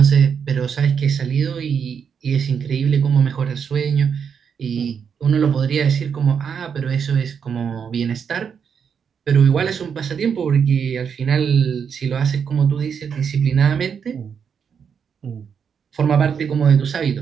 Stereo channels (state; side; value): quieter; left; 7.0 dB